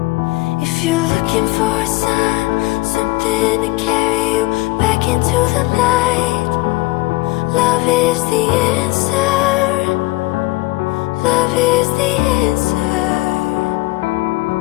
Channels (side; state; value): right; quieter; 21.1 dB